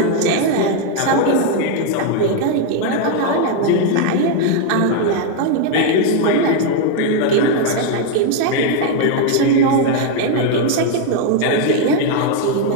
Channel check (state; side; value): different; both; correlation 0.00